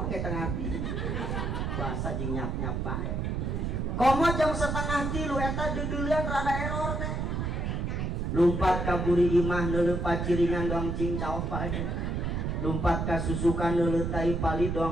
ge teu ngarti puasa jeung nyap-nyap bae komo jam 2:30 eta dudeuleun rada error teh lumpat ka buri imah neuleuh paciringan doang cing caok bae lumpat ka susukan neuleuh tai pali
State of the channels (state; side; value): noise; right; rumble, 1 dB below the sound